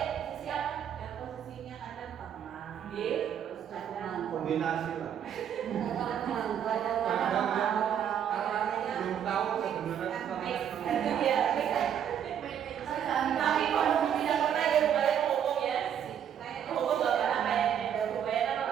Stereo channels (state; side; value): quieter; left; 9.1 dB